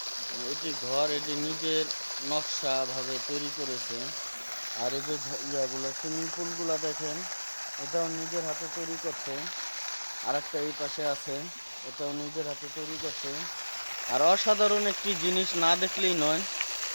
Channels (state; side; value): inverted; both; correlation -1.00